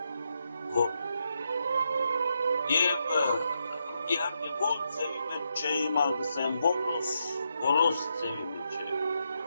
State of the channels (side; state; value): both; inverted; correlation -0.82